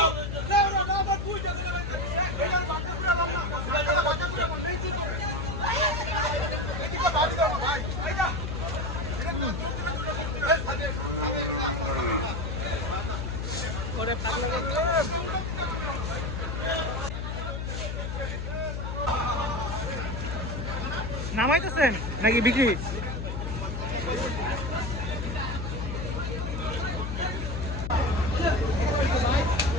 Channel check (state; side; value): noise; left; hum, 4 dB below the sound